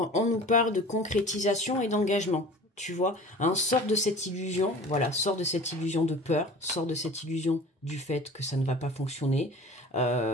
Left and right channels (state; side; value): normal; both; correlation 0.41